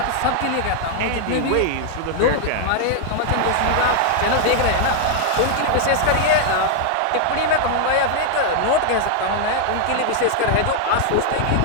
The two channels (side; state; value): both; different; correlation 0.00